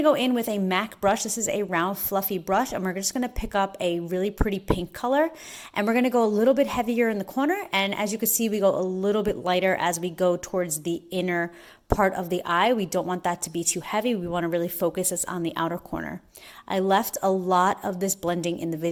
go in with a MAC brush. This is a round fluffy brush and we're just going to pick up a really pretty pink color and we're going to go a little bit heavier in the corner, and as you can see we go a little bit lighter as we go towards the inner part of the eye. We don't want that to be too heavy. We want to really focus us on the outer corner. I left a lot of this blending in the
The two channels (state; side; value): identical; both; correlation 1.00